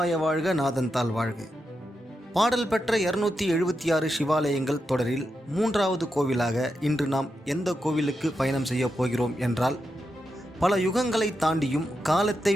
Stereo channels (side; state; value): both; normal; correlation 0.87